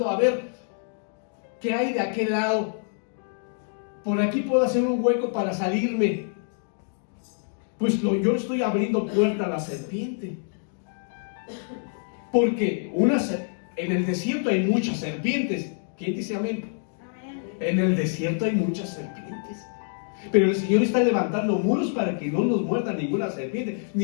a ver qué hay de aquel lado, por aquí puedo hacer un hueco para salirme, pues yo estoy abriendo puerta a la serpiente. Porque en el desierto hay muchas serpientes. ¿Quién dice amén? Amén. En el desierto hay muchas serpientes. Pero el Señor está levantando muros para que no nos muerda ninguna serpiente,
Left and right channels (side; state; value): right; silent; digital silence